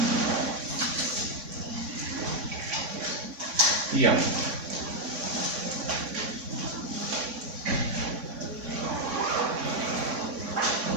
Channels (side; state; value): left; late; 3.6 ms